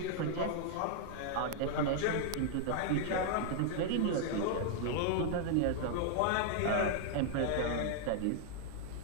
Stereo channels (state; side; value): different; both; correlation 0.00